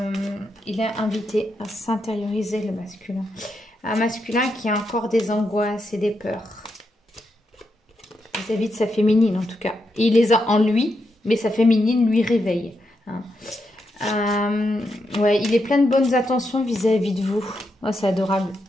il est invité à s'intérioriser le masculin. Un masculin qui a encore des angoisses et des peurs vis-à-vis de sa féminine en tout cas. Et il les a en lui, mais sa féminine lui réveille. Hein. Ouais, il est plein de bonnes attentions vis-à-vis de vous. Oh, c'est adorable.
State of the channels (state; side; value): normal; both; correlation 0.83